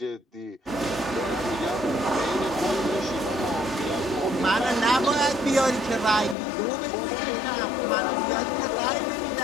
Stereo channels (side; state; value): right; drops out; at 6.4 s